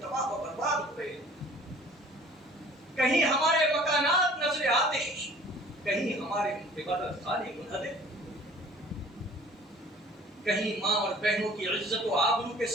و برباد ہو رہے ہیں۔ کہیں ہمارے مکانات نظر آتش، کہیں ہمارے عبادت خانے منہدم، کہیں ماں اور بہنوں کی عزت و آبرو کے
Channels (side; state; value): both; normal; correlation 0.49